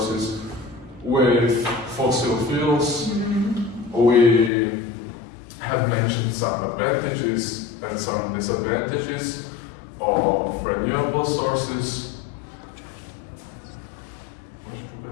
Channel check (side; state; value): right; drops out; at 4.5 s